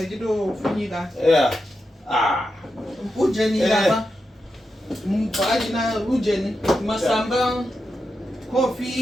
funyika. Yeah. Ujeni lapa. Mpaji na ujeni masamba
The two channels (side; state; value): both; normal; correlation 0.88